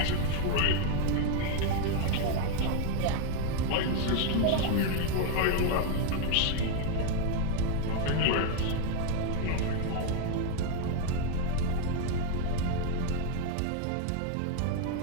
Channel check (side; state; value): both; different; correlation 0.01